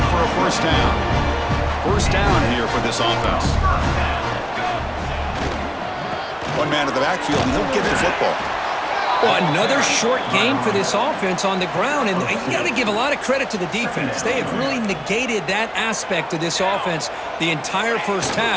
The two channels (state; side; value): identical; both; correlation 1.00